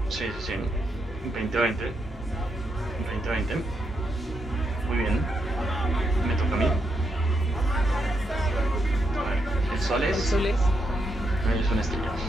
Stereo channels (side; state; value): both; normal; correlation 0.81